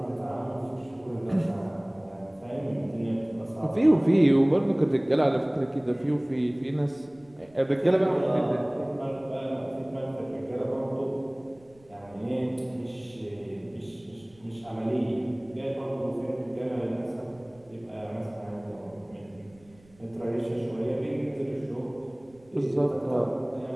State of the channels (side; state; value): right; noise; rumble, 28 dB below the sound